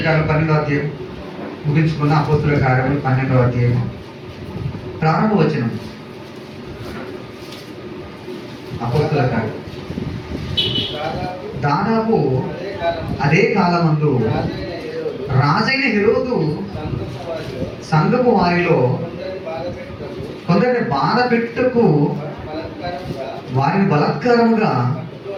కార్యాలు 12వ అధ్యాయం ముగించుకున్న అపోస్తల కార్యాలు 12వ అధ్యాయం ప్రారంభ వచనం. అపోస్తల కార్యం దాదాపు అదే కాలమందు రాజైన హెరోదు సంఘపు వారిలో కొందరిని బాధ పెట్టుటకు వారిని బలాత్కారముగా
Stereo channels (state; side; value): identical; both; correlation 1.00